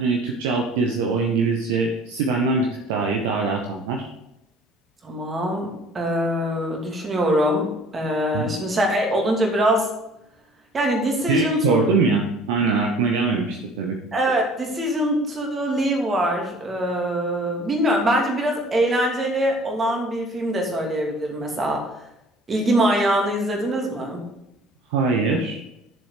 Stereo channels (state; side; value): normal; both; correlation 0.50